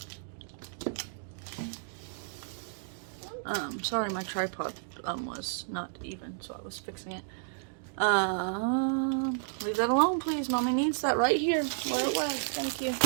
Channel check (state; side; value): silent; left; digital silence